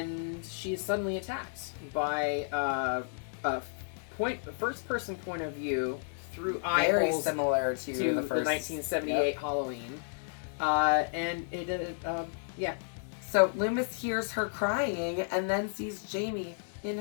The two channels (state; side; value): silent; right; digital silence